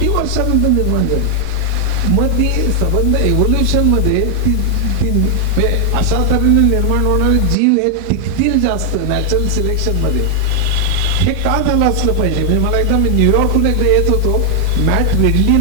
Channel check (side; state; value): both; different; correlation 0.00